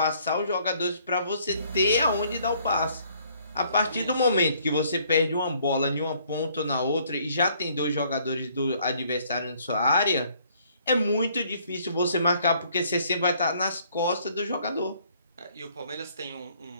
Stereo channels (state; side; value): inverted; both; correlation -0.63